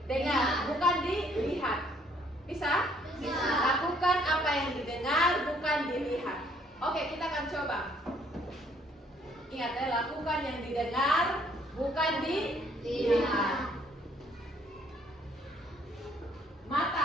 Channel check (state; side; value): normal; both; correlation 0.64